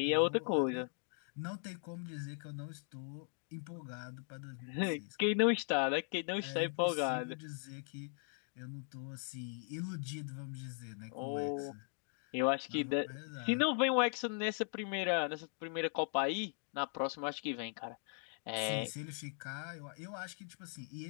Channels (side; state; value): right; silent; 52 dB below the other